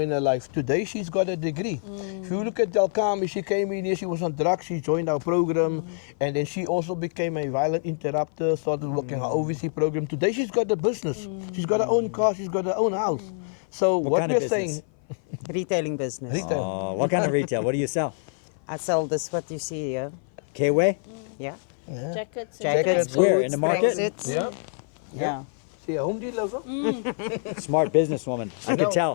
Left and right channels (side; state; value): right; silent; 56 dB below the other